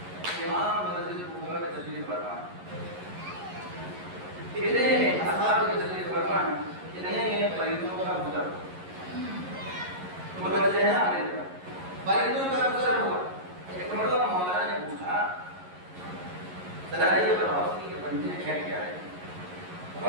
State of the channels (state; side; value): late; left; 11 ms